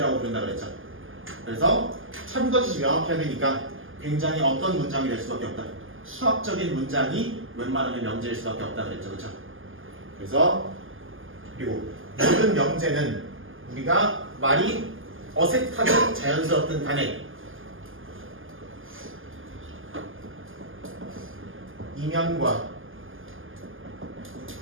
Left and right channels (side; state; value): left; late; 0.58 ms